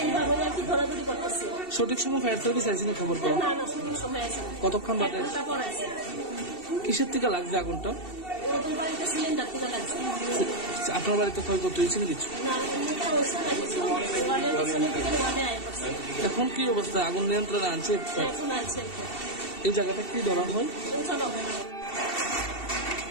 এইভাবে আর কি ধরাধরি করতেছে। সঠিক সময় ফায়ার সার্ভিস আইসি না খবর পাও? না না, সঠিক সময় আছে। কতক্ষণ বাদে? পরে আছে। কিসের থেকে লাগছে আগুনটা? ওদের বাড়িতে সিলিন্ডার থেকে লাগছে। আপনার বাড়িতে ক্ষয়ক্ষতি হয়েছে না কিছু? না, এমনিটা হচ্ছে না কিছু। ওয়ার্ডের পিছনে থেকে ওয়ার্ডে আয় করছে। এখন কি অবস্থা? আগুন নিয়ন্ত্রণে আনছে? এখন আছে। এই জায়গাটা কি ধরা হয়? চলো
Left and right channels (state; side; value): late; right; 2.7 ms